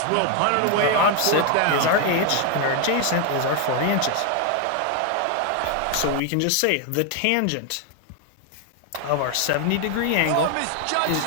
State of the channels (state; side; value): different; both; correlation 0.01